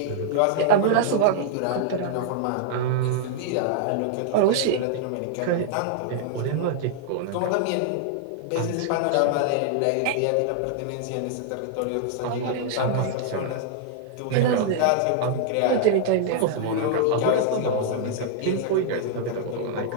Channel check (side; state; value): both; different; correlation -0.01